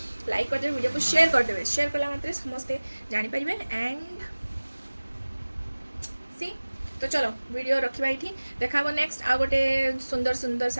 लाइक करदे वीडियो को शेयर करदे शेयर कला मात्रे समस्ते जानीपारे एंड सी तो चलो वीडियो रखा ये देखा नेक्स्ट आ गोटे सुंदर सुंदर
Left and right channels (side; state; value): both; inverted; correlation -1.00